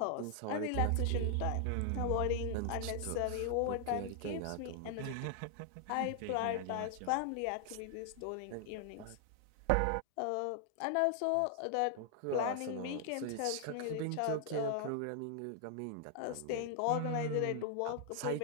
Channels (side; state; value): both; different; correlation 0.00